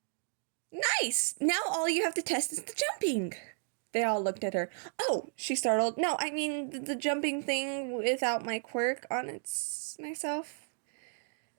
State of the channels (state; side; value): silent; left; digital silence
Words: Nice! Now all you have to test is the jumping! They all looked at her. Oh, she startled. No, I mean the jumping thing without my quirk on myself.